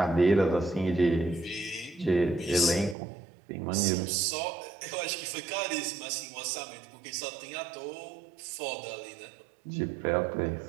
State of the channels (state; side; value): drops out; left; at 3.0 s